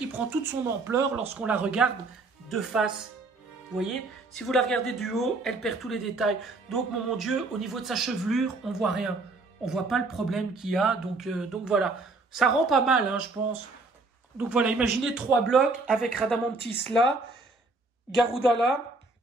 prend toute son ampleur lorsqu'on la regarde de face. Vous voyez, si vous la regardez du haut, elle perd tous les détails. Donc, mon Dieu, au niveau de sa chevelure, on voit rien. On voit pas le problème qu'il y a. Donc voilà, ça rend pas mal, hein, je pense. Donc voilà, imaginez 3 blocs avec Radamantis là, Garuda là,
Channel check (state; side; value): quieter; left; 3.4 dB